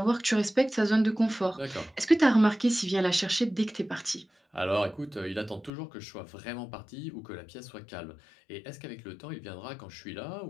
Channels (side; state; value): right; drops out; at 5.7 s